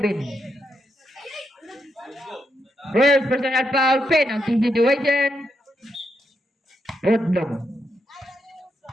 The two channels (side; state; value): both; normal; correlation 0.82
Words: First personal foul, penalty situation. Outlaw.